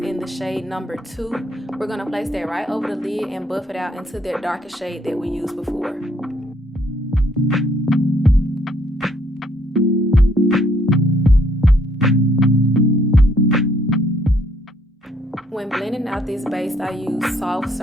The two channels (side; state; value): both; normal; correlation 0.67